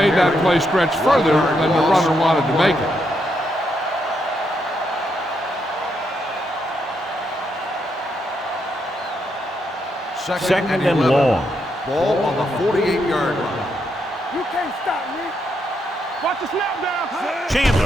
that play stretch further than the runner wanted to make it. Second and long. Ball on the 48-yard line. You can't stop me. Watch the snap down.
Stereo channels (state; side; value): normal; both; correlation 0.79